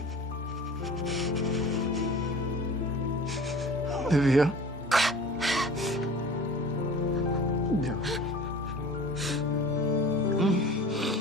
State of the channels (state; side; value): normal; both; correlation 0.41